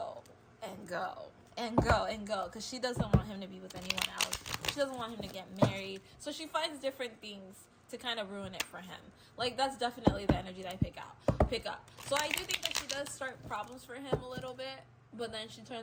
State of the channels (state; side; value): identical; both; correlation 1.00